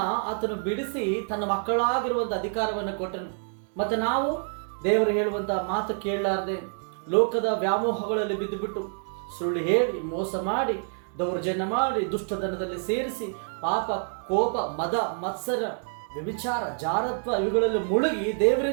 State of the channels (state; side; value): silent; left; 56 dB below the other